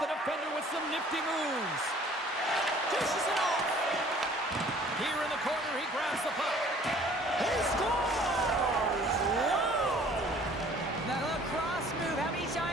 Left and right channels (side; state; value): both; normal; correlation 0.53